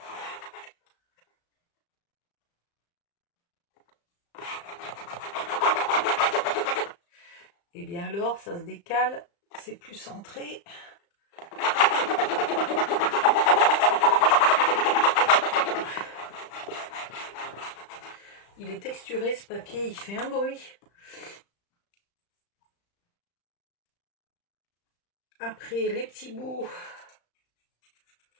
Et bien alors, ça se décale, c'est plus centré. Il est texturé ce papier, il fait un bruit. après, les petits bouts,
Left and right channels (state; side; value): late; right; 35 ms